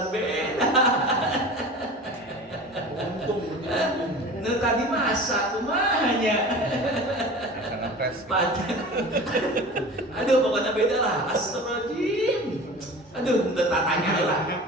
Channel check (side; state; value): both; normal; correlation 0.37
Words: beda. Nah tadi masak kumanya. Aduh pokoknya beda lah. Astagfirullahaladzim. Aduh udah tatanya lah.